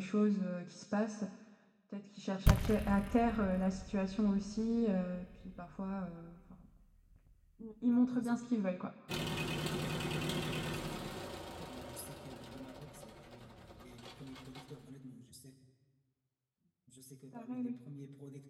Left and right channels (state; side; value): identical; both; correlation 1.00